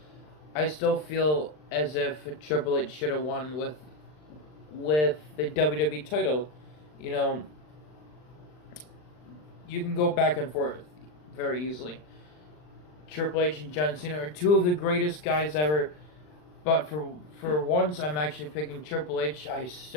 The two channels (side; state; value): right; late; 39 ms